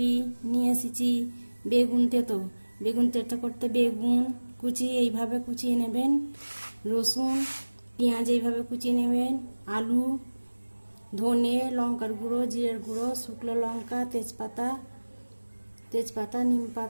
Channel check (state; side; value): inverted; both; correlation -1.00